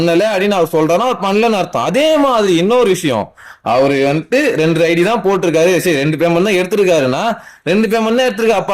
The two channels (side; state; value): both; identical; correlation 1.00